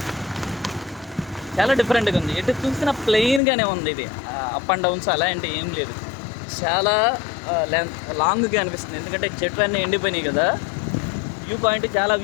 చాలా డిఫరెంట్గా ఉంది. ఎటు చూసిన ప్లెయిన్గానే ఉంది. ఇది అప్ అండ్ డౌన్స్ అలాంటి ఏం లేదు. చాలా లాంగ్గా అనిపిస్తుంది, ఎందుకంటే చెట్లు అన్నీ ఎండిపోయినాయి కదా. వ్యూ పాయింట్ చాలా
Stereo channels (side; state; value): right; drops out; at 3.4 s